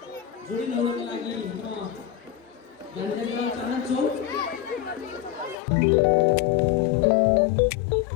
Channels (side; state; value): right; drops out; at 5.6 s